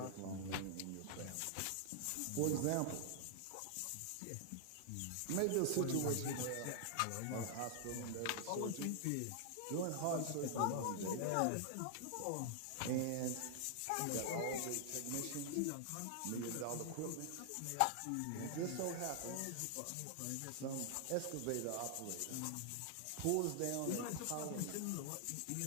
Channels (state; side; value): different; both; correlation 0.00